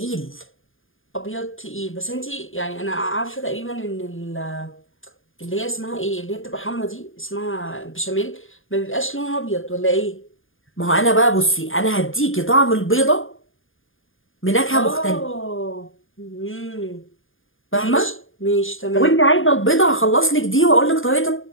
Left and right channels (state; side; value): late; right; 0.59 ms